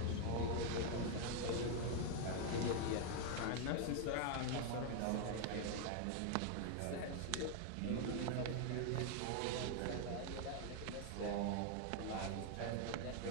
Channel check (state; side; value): different; both; correlation 0.00